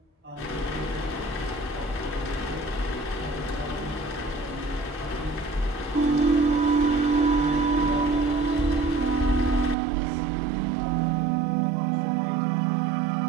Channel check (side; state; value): left; drops out; at 9.8 s